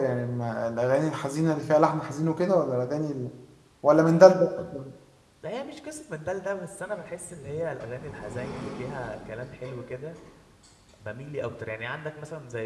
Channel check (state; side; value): identical; both; correlation 1.00